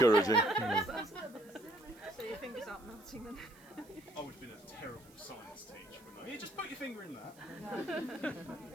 So your fingers aren't melting then? I would have been a terrible science teacher. Wouldn't I? Yeah, just put your finger in that.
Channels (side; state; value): right; noise; hiss, 26 dB below the sound